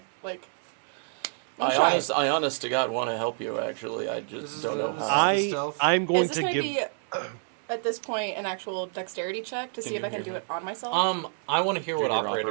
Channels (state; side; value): silent; left; 59 dB below the other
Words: I honest to God want to help you. Actually, I just don't know how. I'm going Is this to gonna give. be at this point an actual dexterity check to see if I can do it on myself? I want to hear what Junior